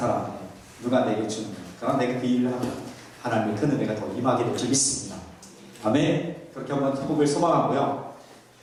누가 내게 주는 거. 그럼 내가 그 일을 하면 하나님의 큰 은혜가 더 임하게 될 줄 믿습니다. 아멘. 그렇게 한번 회복을 소망하고요.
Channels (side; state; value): both; identical; correlation 1.00